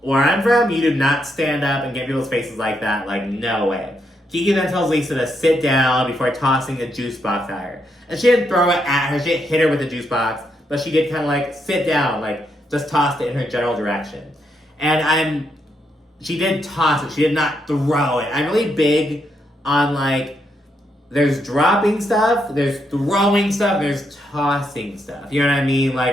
where I'm from, you do not stand up and get people's faces like that. Like, no way. Kiki then tells Lisa to sit down before tossing a juice box at her. And she didn't throw it at her, she didn't hit her with the juice box, but she did kind of like sit down, like just tossed it in her general direction. And she did toss it, she did not throw it. I'm really big on like, there's dropping stuff, there's throwing stuff, there's tossing stuff. You know what I mean?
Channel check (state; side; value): normal; both; correlation 0.79